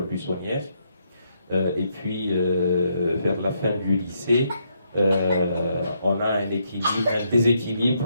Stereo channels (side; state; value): both; inverted; correlation -0.76